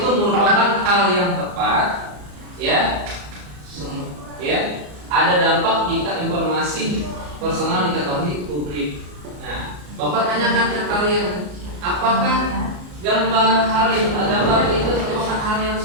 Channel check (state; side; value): late; left; 34 ms